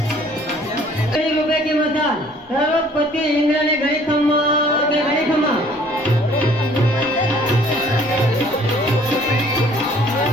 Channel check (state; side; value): normal; both; correlation 0.56